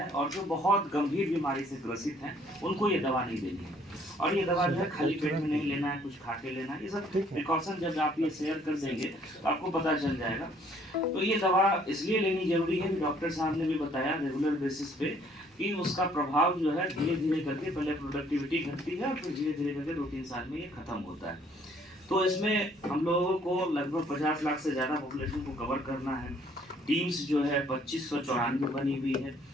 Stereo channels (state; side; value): normal; both; correlation 0.62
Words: और जो बहुत गंभीर बीमारी से ग्रसित हैं उनको ये दवा नहीं देनी है। और ये दवा जो है खाली पेट में नहीं लेना है, कुछ खा के लेना है। ये सब प्रिकॉशन जब आप ये शेयर कर देंगे तो आपको पता चल जाएगा। तो ये दवा इसलिए लेनी जरूरी है कि डॉक्टर साहब ने भी बताया रेगुलर बेसिस पे कि उसका प्रभाव जो है धीरे धीरे करके पहले प्रोडक्टिविटी घटती है और फिर धीरे धीरे करके 2-3 साल में ये खत्म होता है। तो इसमें हम लोगों को लगभग 50 लाख से ज़्यादा पॉपुलेशन को कवर करना है। टीम्स जो है 2594 बनी हुई है